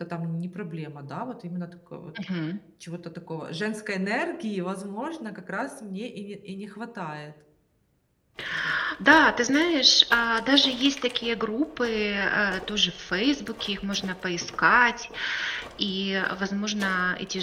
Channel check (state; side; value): identical; both; correlation 1.00